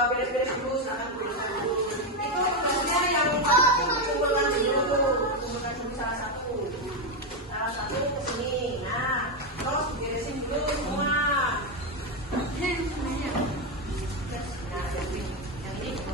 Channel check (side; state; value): both; normal; correlation 0.07